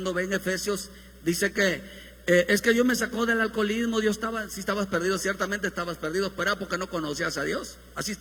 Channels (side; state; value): both; identical; correlation 1.00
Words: ve en Efesios, dice que es que Dios me sacó del alcoholismo. Dios estaba, si estabas perdido, ciertamente estabas perdido, pero era porque no conocías a Dios. Así